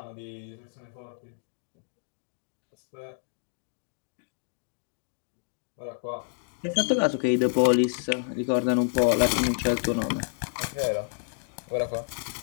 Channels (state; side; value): silent; right; digital silence